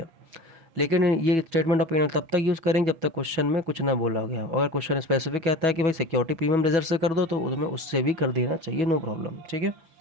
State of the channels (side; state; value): left; late; 6.1 ms